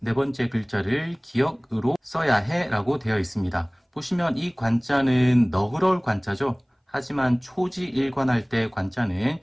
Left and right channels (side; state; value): both; identical; correlation 1.00